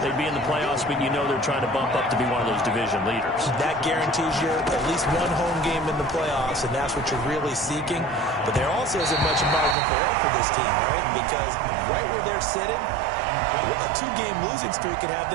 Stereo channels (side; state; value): left; drops out; at 9.8 s